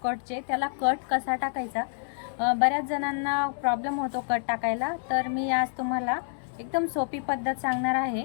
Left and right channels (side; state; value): right; silent; digital silence